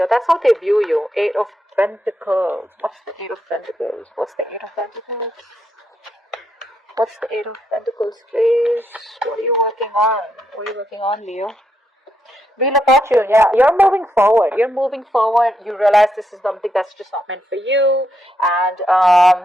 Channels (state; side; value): normal; both; correlation 0.80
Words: That's how they view you. Eight of Pentacles. What's the Eight of Pentacles? What's the Eight of Pentacles? What's the Eight of Pentacles, please? What are you working on? What are you working on, Leo? Wheel of Fortune, yeah. You're moving forward. You're moving forward. You realize this is something that's just not meant for you.